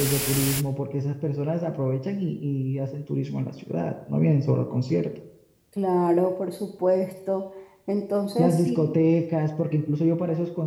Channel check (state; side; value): identical; both; correlation 1.00